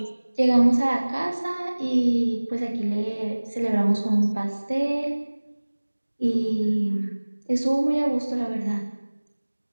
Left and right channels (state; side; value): inverted; both; correlation -1.00